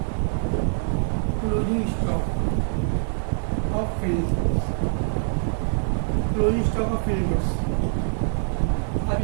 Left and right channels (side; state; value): left; silent; 62 dB below the other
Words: closing stock of finish goods. Closing stock of finish goods